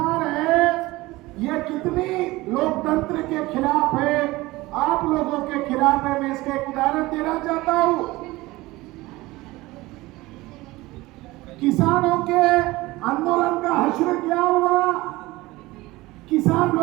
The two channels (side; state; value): left; quieter; 19.9 dB